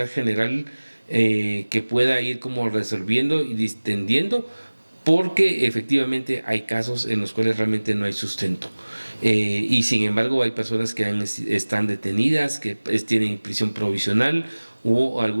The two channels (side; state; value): both; inverted; correlation -1.00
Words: general, que pueda ir como resolviendo y distendiendo, porque efectivamente hay casos en los cuales realmente no hay sustento, y sin embargo hay personas que están detenidas, que tienen prisión provisional, o